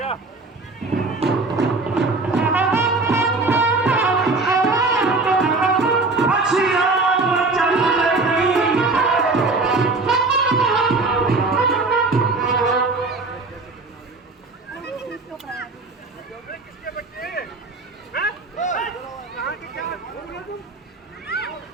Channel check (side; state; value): left; quieter; 3.6 dB